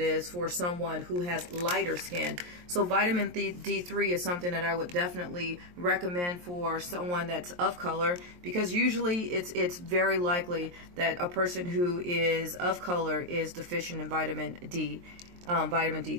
for someone who has lighter skin. So vitamin D3 is something that I would definitely recommend for someone that's of color, because usually it's very likely that a person who is of color is deficient in vitamin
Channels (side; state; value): left; late; 23 ms